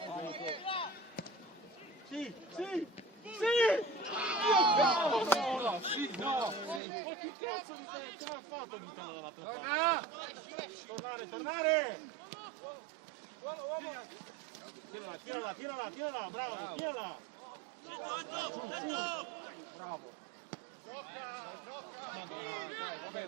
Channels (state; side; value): drops out; left; at 6.8 s